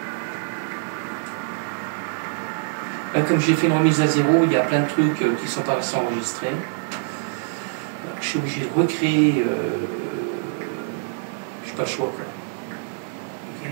Comme j'ai fait une remise à zéro, il y a plein de trucs qui ne sont pas restés enregistrés. Alors, je suis obligé de recréer. Je n'ai pas le choix. Quoi.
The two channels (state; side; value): silent; left; digital silence